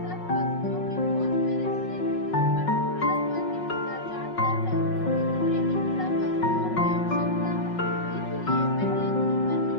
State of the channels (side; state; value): right; late; 5.4 ms